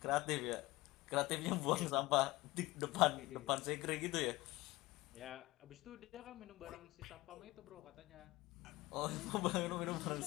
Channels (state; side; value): quieter; right; 19.9 dB